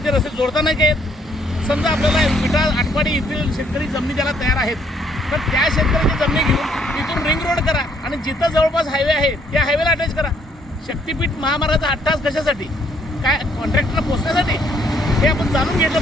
रस्ते जोडता नाही आहेत. समजा आपल्याला विटा आटपाडी येथील शेतकरी जमिनी द्यायला तयार आहेत, तर त्या शेतकऱ्याची जमिनी घेऊन तिथून रिंग रोड करा आणि जिथं जवळपास हायवे आहे त्या हायवेला अटॅच करा. शक्तिपीठ महामार्गाचा 8 तास कशासाठी? काय कॉन्ट्रॅक्टरला पोहोचण्यासाठी? हे आपण जाणून घेतलं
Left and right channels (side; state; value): both; normal; correlation 0.67